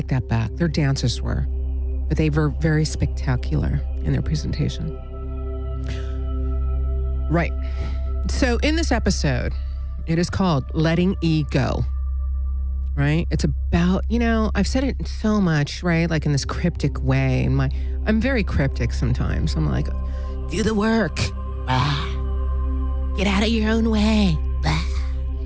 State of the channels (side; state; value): both; identical; correlation 1.00